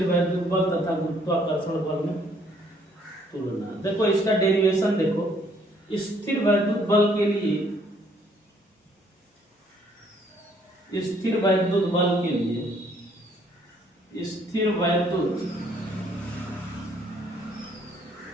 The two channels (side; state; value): both; normal; correlation 0.65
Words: वैद्युत बल तथा गुरुत्वाकर्षण बल में तुलना। देखो इसका डेरिवेशन देखो, स्थिर वैद्युत बल के लिए, स्थिर वैद्युत बल के लिए, स्थिर वैद्युत